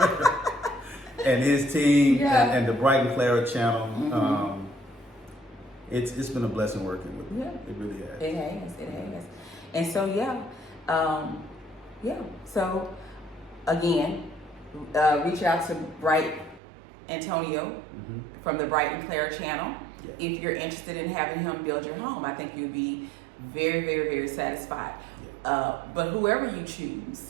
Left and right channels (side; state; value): left; drops out; at 16.6 s